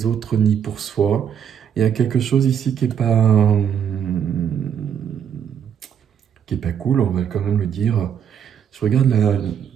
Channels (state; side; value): quieter; left; 8.4 dB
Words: autres ni pour soi. Il y a quelque chose ici qui est pas cool, on va quand même le dire. Je regarde